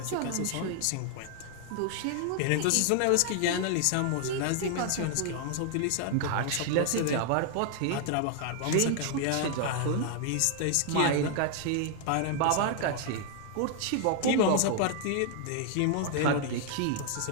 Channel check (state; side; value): different; both; correlation 0.00